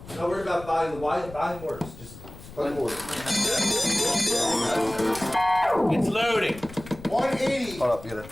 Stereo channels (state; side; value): noise; left; rumble, 16 dB below the sound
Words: Don't worry about buying the why. Buying works. Just Plug it in. It's loading. 180. hold up, get